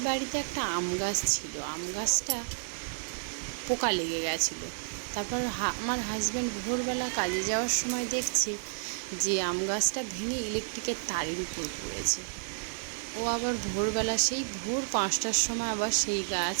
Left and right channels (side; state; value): left; silent; 56 dB below the other